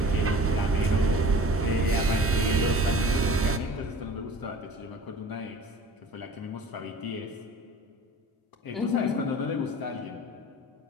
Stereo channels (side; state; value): both; normal; correlation 0.44